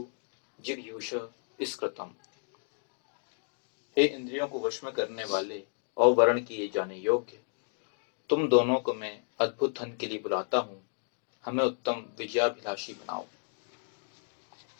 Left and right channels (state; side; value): silent; right; 56 dB below the other